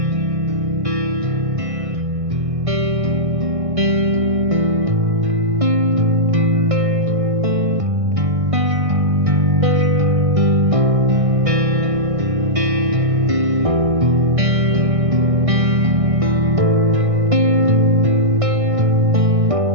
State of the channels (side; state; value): left; late; 1.6 ms